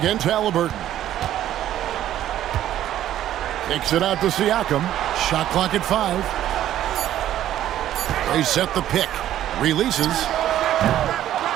Halliburton. Kicks it out to Siakam. Shot clock at 5. They set the pick. Releases.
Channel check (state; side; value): quieter; left; 12.2 dB